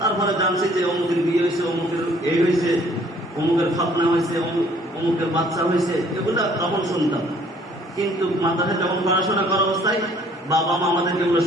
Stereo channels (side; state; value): both; normal; correlation 0.59